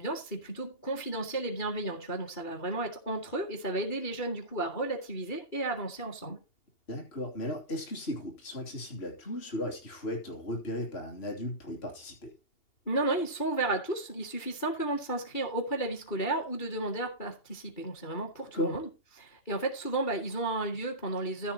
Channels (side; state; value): right; late; 2.8 ms